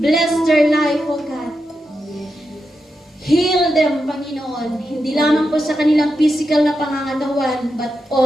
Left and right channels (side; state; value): both; normal; correlation 0.87